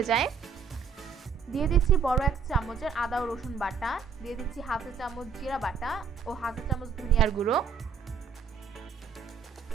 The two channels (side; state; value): left; quieter; 6.1 dB